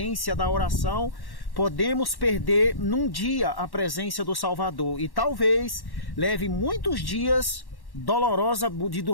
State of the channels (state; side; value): late; right; 1.1 ms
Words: da oração, podemos perder num dia a presença do Salvador, e talvez leve muitos dias